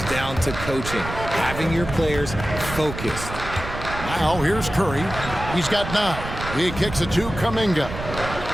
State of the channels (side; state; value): right; noise; rumble, 9 dB below the sound